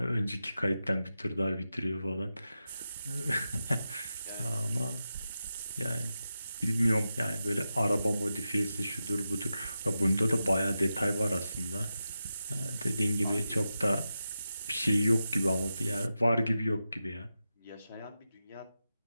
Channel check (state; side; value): inverted; both; correlation -0.90